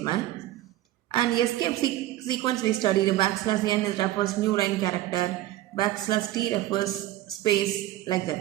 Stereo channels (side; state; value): left; quieter; 14.9 dB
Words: And escape sequence we studied. \n refers new line character. \t refers space, like that.